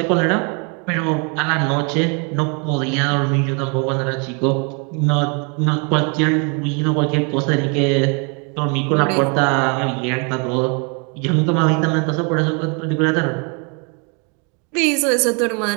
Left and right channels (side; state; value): left; quieter; 35.1 dB